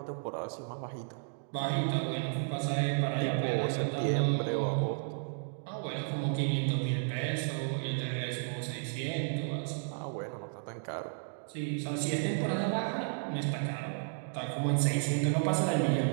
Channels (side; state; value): left; silent; digital silence